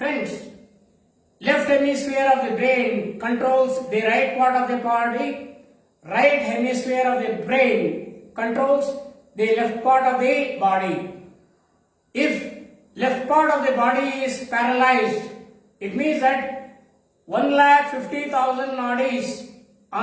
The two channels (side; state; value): both; identical; correlation 1.00